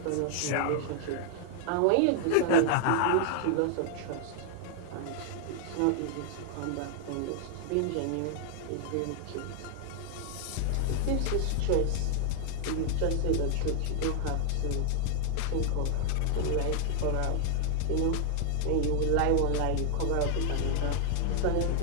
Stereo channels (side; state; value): both; different; correlation 0.00